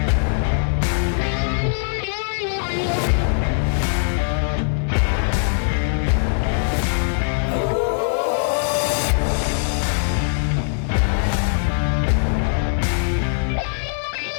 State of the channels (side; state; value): right; silent; 56 dB below the other